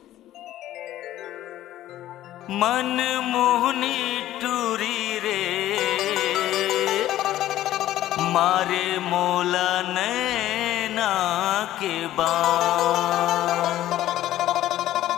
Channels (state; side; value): quieter; right; 13.8 dB